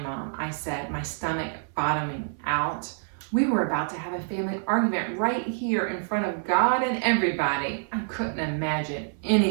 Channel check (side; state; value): left; silent; 57 dB below the other